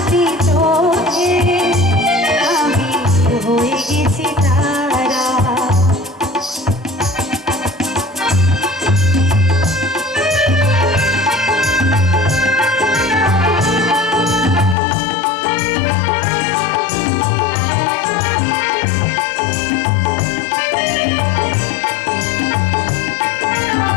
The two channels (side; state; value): right; drops out; at 14.8 s